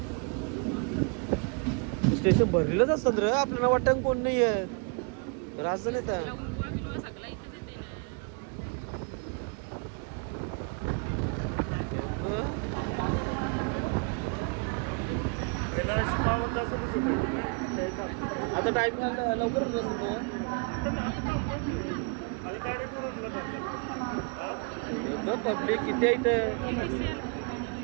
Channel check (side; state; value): left; quieter; 35.5 dB